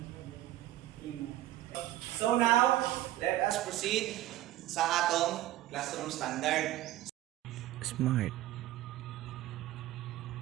So now, let us proceed sa atong classroom standard. Smart.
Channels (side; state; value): left; quieter; 15.0 dB